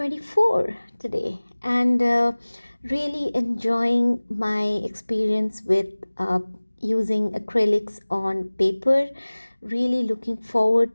today, and really enjoying my experience with using acrylics on paper. Really looking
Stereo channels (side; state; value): both; inverted; correlation -1.00